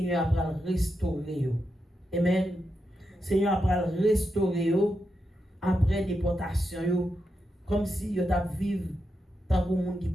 a restauré. Amen. Seigneur a restauré après déportation comme si yo t'a vivre tant que monde qui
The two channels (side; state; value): both; normal; correlation 0.86